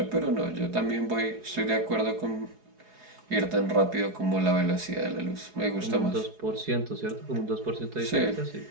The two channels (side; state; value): left; late; 4.8 ms